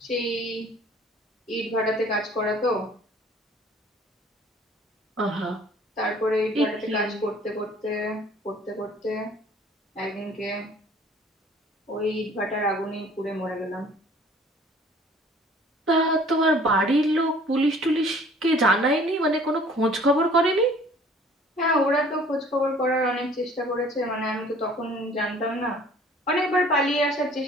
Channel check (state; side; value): normal; both; correlation 0.52